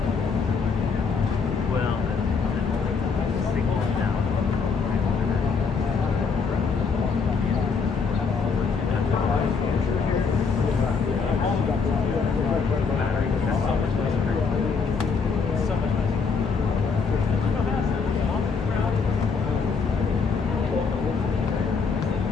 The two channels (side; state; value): right; quieter; 5.3 dB